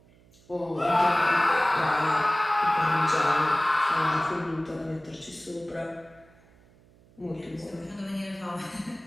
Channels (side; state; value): right; noise; hum, 28 dB below the sound